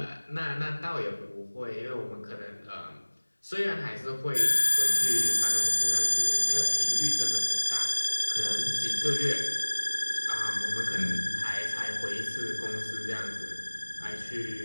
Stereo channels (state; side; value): inverted; both; correlation -1.00